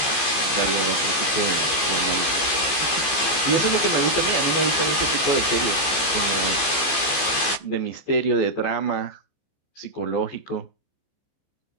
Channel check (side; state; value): right; late; 15 ms